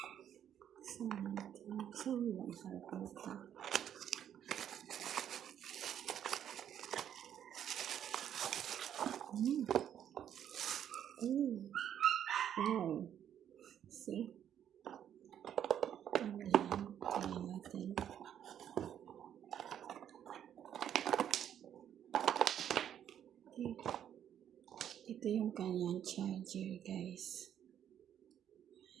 So, natin. So, lang harapota. Wow. See? Ayan. Ayan natin. Okay. Ito yung kanyang charger, guys.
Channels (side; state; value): left; quieter; 9.8 dB